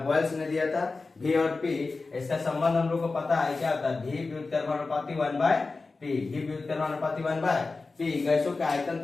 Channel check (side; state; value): right; quieter; 3.8 dB